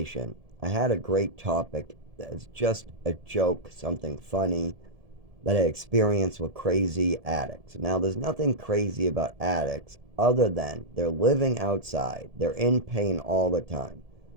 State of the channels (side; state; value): left; late; 1.7 ms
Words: I had a great topic that's just a joke, something funny that I experienced with crazy addicts. Now, there's nothing crazy about addicts other than they're living outside, they're in pain all the time.